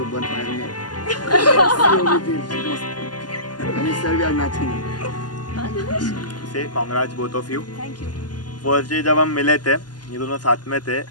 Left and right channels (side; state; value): right; late; 0.70 ms